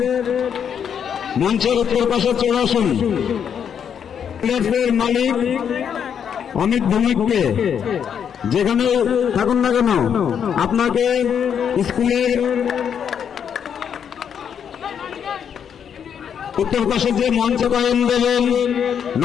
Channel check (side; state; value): right; quieter; 8.0 dB